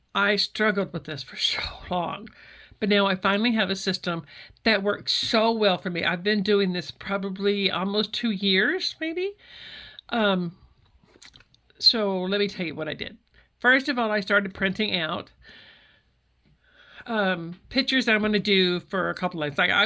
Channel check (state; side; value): identical; both; correlation 1.00